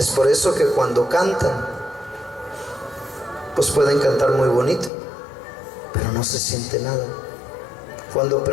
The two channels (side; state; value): right; drops out; at 4.9 s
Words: por eso que cuando cantan, pues pueden cantar muy bonito, pero no se siente nada. Cuando